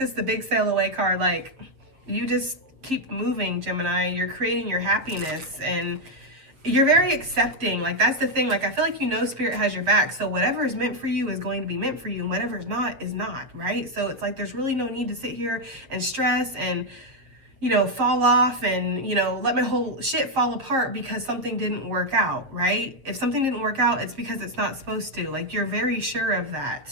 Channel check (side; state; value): left; late; 7.2 ms